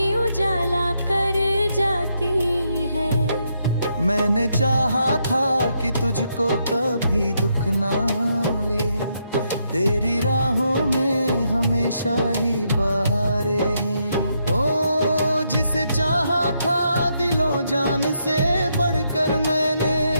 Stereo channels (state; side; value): inverted; both; correlation -0.79